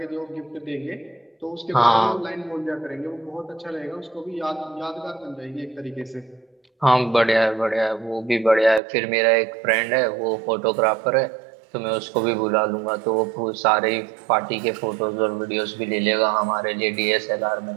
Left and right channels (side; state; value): left; drops out; at 8.8 s